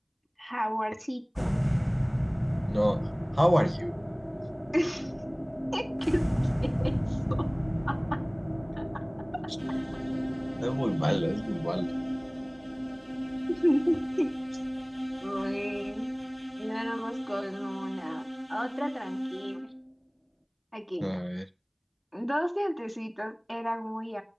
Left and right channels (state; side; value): identical; both; correlation 1.00